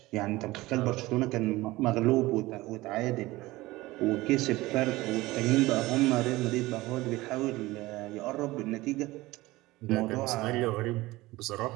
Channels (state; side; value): quieter; left; 19.3 dB